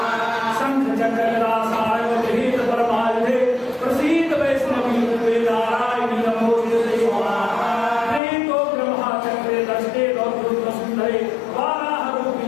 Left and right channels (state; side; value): drops out; right; at 8.2 s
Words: शंखचक्रगदासायवगृहीत परमायुधे प्रसीद वैष्णवी रूपे नारायणी नमोस्तुते प्रेतो ब्रह्मचक्रे दष्टे गौरवसुन्दरे